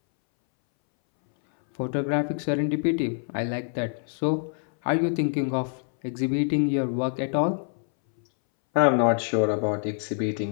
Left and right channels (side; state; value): right; silent; 61 dB below the other